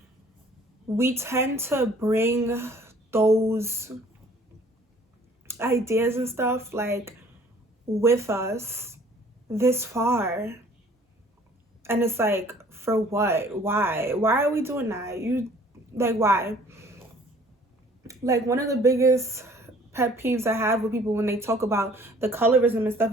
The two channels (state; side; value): normal; both; correlation 0.55